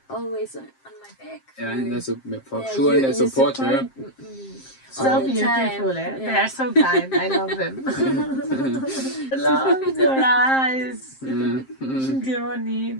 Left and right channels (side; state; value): right; late; 7.6 ms